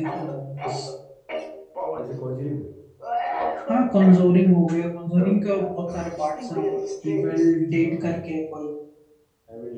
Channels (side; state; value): both; identical; correlation 1.00